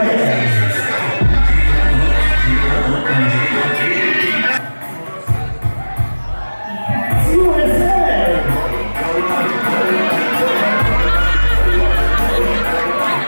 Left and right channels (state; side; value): inverted; both; correlation -1.00